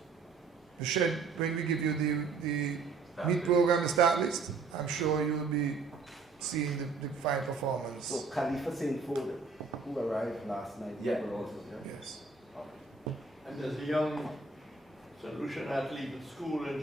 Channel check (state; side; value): quieter; left; 4.5 dB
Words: shed when we give you the meet program, the start list. I'm sure you'll be seeing the fine performance. So Khalifa St. Ford, who arrived last night, Yeah. were also there. Yes. And there's a young solution athlete at school in